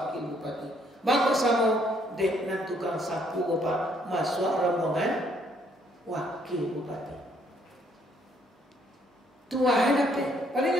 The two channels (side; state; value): both; normal; correlation 0.68